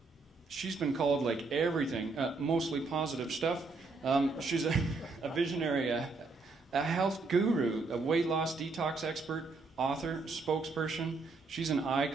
she's been called like everything, mostly positive stuff. She's a visionary, a health guru, a weight loss detox expert, author, spokesperson. She's an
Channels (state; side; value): quieter; left; 3.8 dB